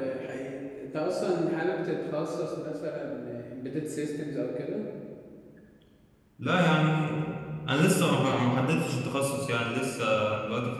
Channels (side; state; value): both; identical; correlation 1.00